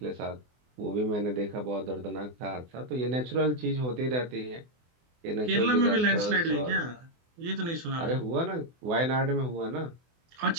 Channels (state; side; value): late; left; 24 ms